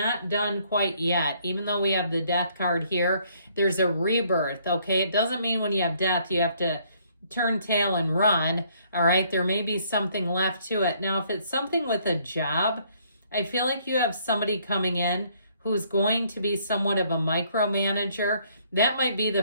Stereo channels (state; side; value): inverted; both; correlation -0.65